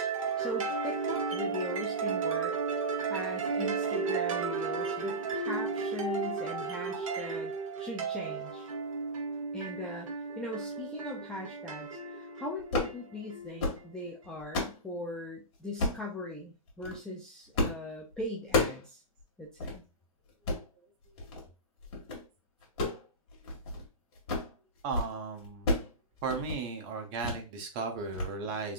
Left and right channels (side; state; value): both; normal; correlation -0.17